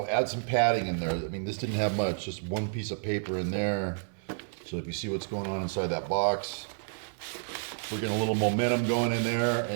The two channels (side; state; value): left; silent; digital silence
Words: add some padding in there. I mean, this didn't have much, just one piece of paper in there. So if you see what's going on inside that box, we're getting a little momentum going in there,